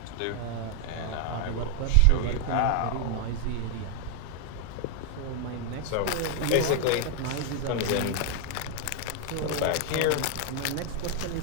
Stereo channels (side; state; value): both; different; correlation 0.00